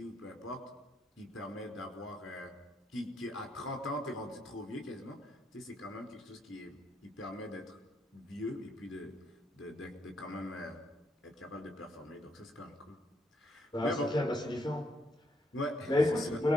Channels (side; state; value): both; normal; correlation 0.75